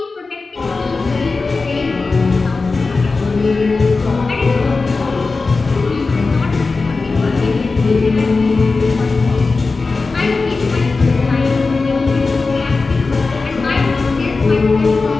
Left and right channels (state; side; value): quieter; right; 4.0 dB